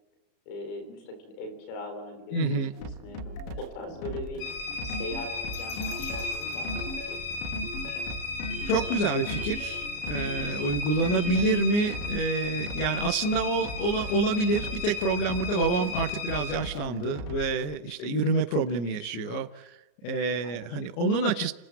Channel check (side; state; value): right; late; 34 ms